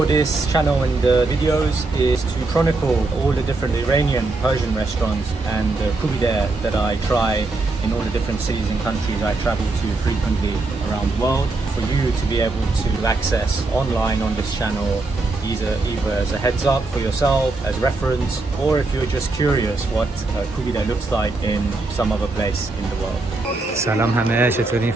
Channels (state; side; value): quieter; left; 3.4 dB